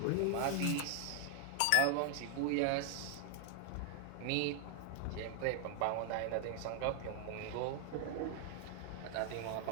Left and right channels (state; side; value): different; both; correlation 0.00